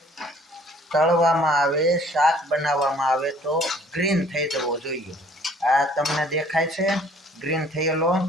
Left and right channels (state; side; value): normal; both; correlation 0.56